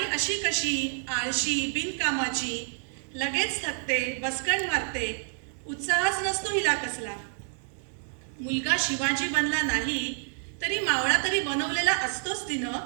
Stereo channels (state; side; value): silent; left; digital silence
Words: अशी कशी आळशी बिनकामाची लगेच थकते बसकण मारते उत्साहच नसतो हिला कसला मुलगा शिवाजी बनला नाही तरी मावळा तरी बनवलेला असतोच तिनं